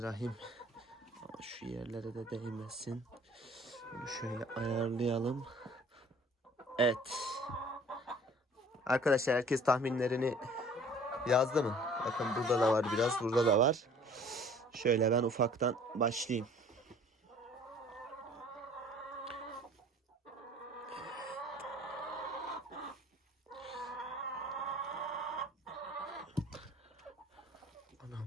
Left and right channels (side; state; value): both; normal; correlation 0.52